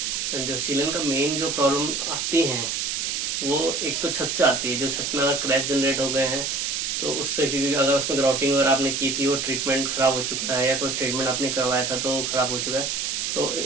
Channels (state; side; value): noise; right; hiss, 1 dB below the sound